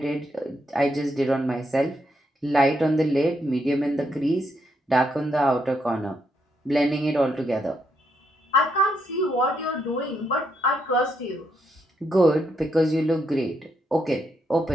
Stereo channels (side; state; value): both; normal; correlation 0.78